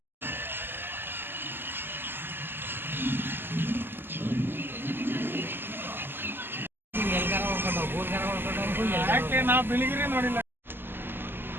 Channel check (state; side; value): late; left; 0.099 ms